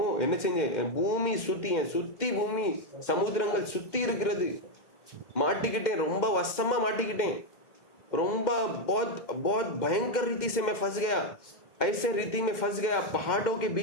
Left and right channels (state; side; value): late; right; 2.1 ms